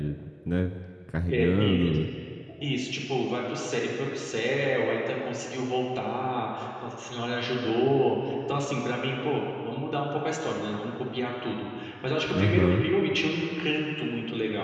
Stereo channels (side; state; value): both; identical; correlation 1.00